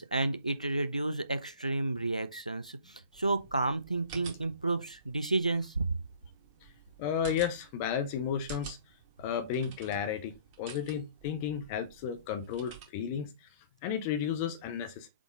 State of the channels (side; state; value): both; inverted; correlation -0.52